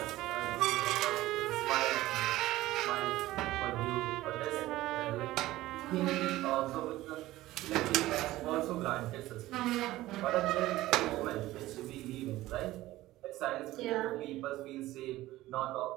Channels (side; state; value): left; quieter; 16.6 dB